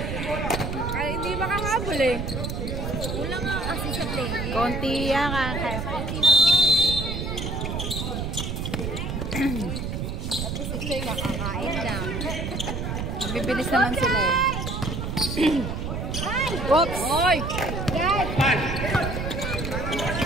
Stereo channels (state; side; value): noise; right; rumble, 3 dB below the sound